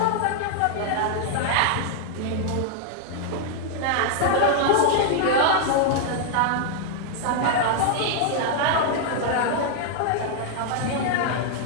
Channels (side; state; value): both; different; correlation 0.00